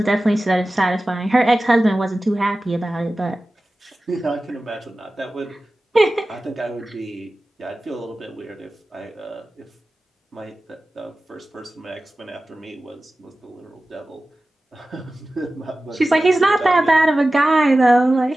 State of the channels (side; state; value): both; normal; correlation 0.96